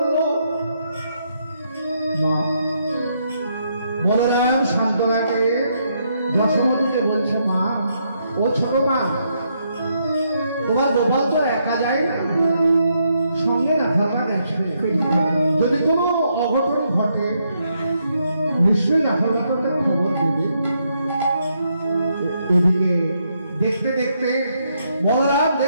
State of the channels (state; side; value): inverted; both; correlation -0.77